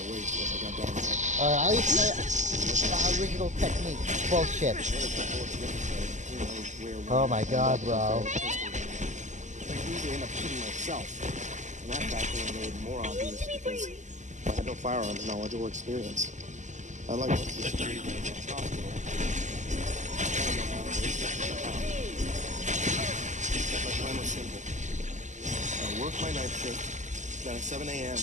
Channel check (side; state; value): left; late; 0.35 ms